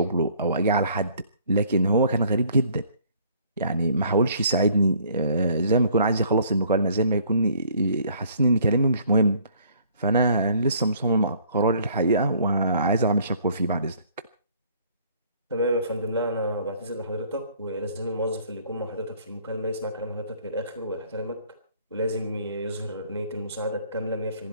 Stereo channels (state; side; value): inverted; both; correlation -0.59